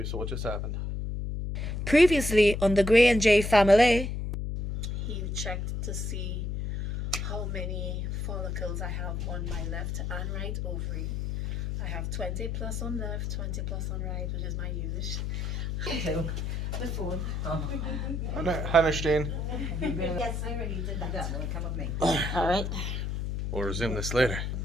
so what just happened? Previously on the Grey and J family. He checked to see how many follicles I have on my left and right ovary. I have 20 plus on left, 20 plus on right, which is my usual. The phone. Hi, Jeanne. Yes, I already did that. Come with me. All right. We'll resume this later.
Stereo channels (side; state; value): left; noise; hum, 2 dB below the sound